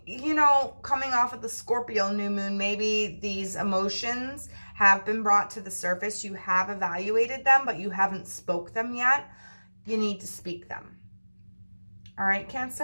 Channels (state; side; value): inverted; both; correlation -1.00